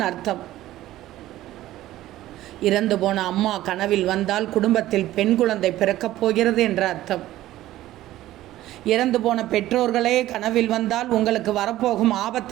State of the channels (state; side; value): quieter; left; 14.9 dB